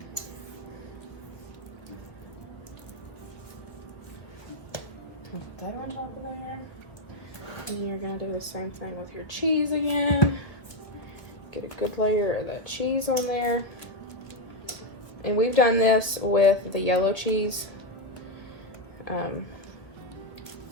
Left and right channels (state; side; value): late; right; 1.4 ms